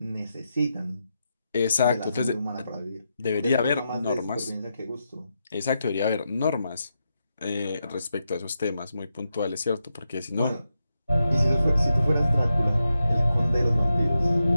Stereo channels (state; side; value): inverted; both; correlation -0.87